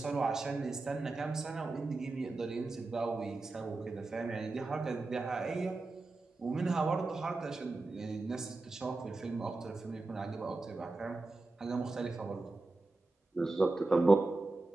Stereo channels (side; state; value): left; quieter; 3.3 dB